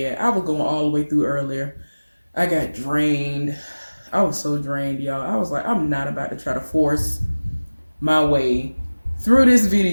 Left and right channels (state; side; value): inverted; both; correlation -1.00